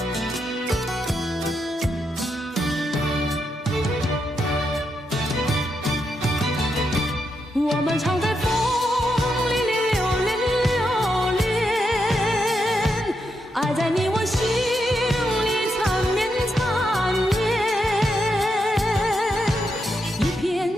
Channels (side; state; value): both; normal; correlation 0.83